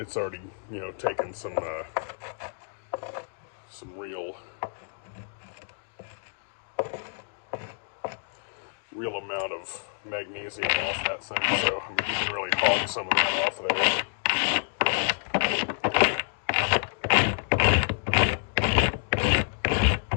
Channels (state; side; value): silent; right; digital silence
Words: already, you know, taken some real amount of magnesium off that thing, so I mean, you can really hog some of that off of there.